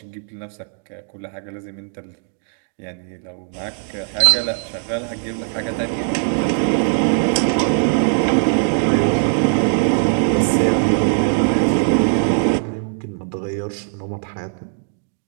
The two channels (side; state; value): left; silent; 58 dB below the other